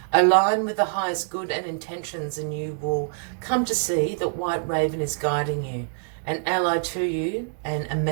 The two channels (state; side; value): silent; left; digital silence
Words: Align with the highest good and intentions, and you will come to see that White Raven is guiding you, an ally to you, and a